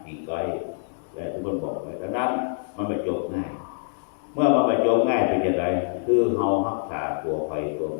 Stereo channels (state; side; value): silent; right; digital silence